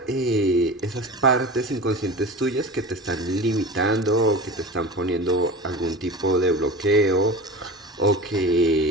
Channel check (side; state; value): both; normal; correlation 0.33